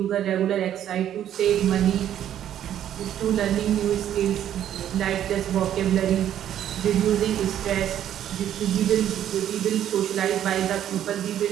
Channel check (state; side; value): quieter; left; 10.8 dB